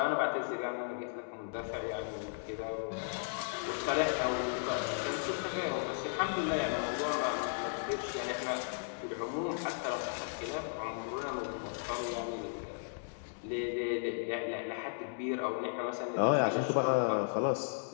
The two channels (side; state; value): right; silent; digital silence